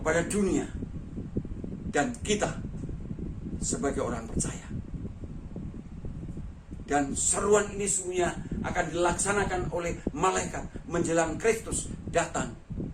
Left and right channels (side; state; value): both; identical; correlation 1.00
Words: dunia dan kita sebagai orang percaya. Dan seruan ini semuanya akan dilaksanakan oleh malaikat menjelang Kristus datang